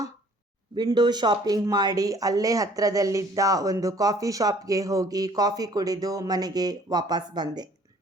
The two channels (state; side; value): normal; both; correlation 0.56